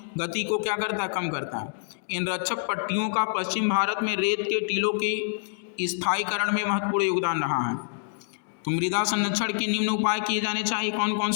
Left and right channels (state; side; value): silent; right; digital silence